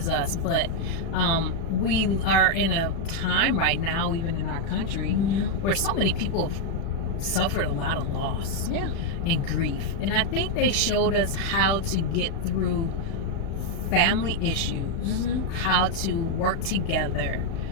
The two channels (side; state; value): right; late; 36 ms